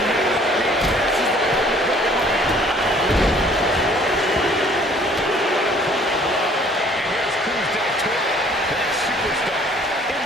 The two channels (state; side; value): normal; both; correlation 0.56